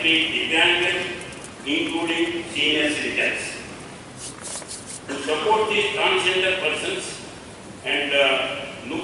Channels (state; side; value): identical; both; correlation 1.00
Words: Divyangas, including senior citizens. To support these transgender persons and look